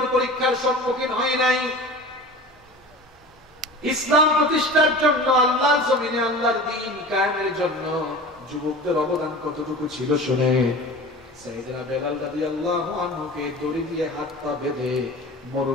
পরীক্ষার সম্মুখীন হই নাই। ইসলাম প্রতিষ্ঠার জন্য, আল্লাহর জমিনে আল্লাহর দ্বীন কায়েমের জন্য যুবকদের অবদান কতটুকু ছিল শুনে। সাইয়েদনা বেলাল রাদিয়াল্লাহু আনহুকে দড়ি দিয়ে হাত পা বেঁধে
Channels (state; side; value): normal; both; correlation 0.37